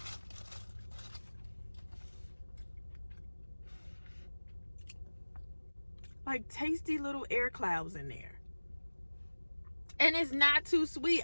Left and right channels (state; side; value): inverted; both; correlation -1.00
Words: Like tasty little air clouds in there. And it's not too